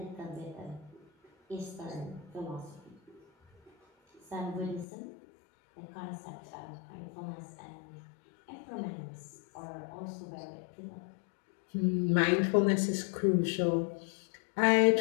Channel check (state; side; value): drops out; right; at 4.9 s